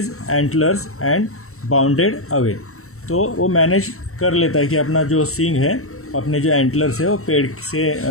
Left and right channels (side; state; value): right; late; 0.63 ms